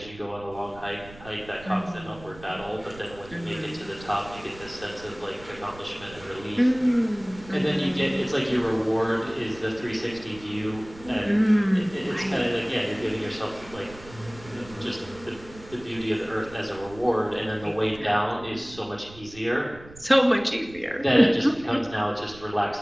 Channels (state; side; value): noise; right; rumble, 19 dB below the sound